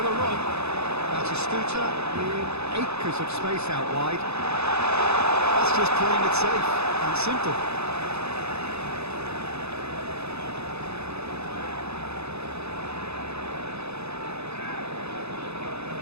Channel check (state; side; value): late; left; 0.80 ms